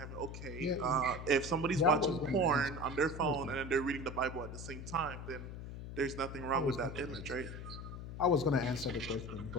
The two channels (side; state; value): left; noise; hum, 9 dB below the sound